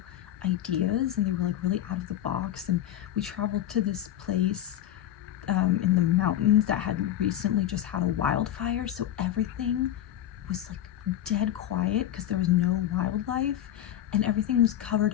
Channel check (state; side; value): quieter; right; 11.7 dB